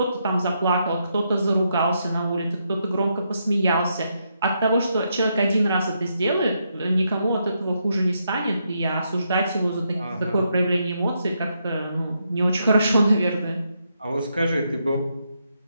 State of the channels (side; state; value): both; inverted; correlation -0.80